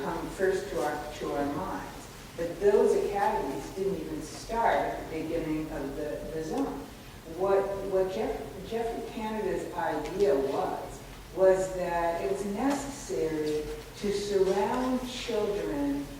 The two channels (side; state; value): both; identical; correlation 1.00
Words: come first to our minds. But those academies didn't even start at the beginning of the zone. What Jeffrey Canada's idea was that it was necessary to surround children